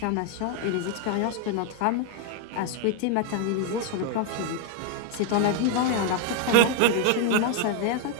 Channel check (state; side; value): different; both; correlation 0.01